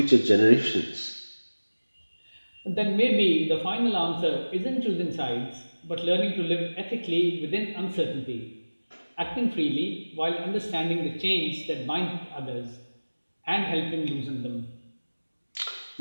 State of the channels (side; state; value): both; inverted; correlation -1.00